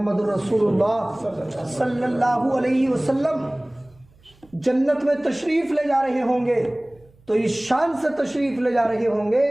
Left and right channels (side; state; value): right; noise; hum, 30 dB below the sound